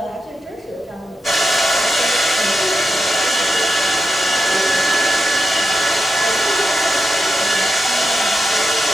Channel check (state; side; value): normal; both; correlation 0.88